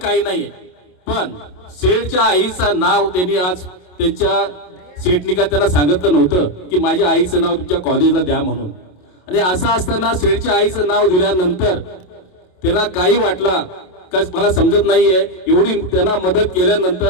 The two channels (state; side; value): late; right; 27 ms